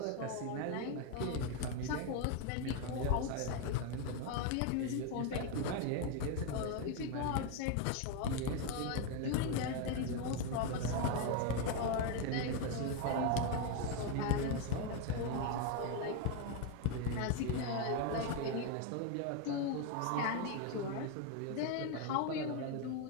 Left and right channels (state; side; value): different; both; correlation 0.01